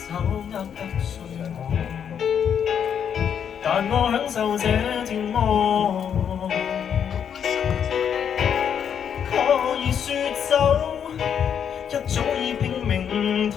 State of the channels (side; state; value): right; quieter; 8.1 dB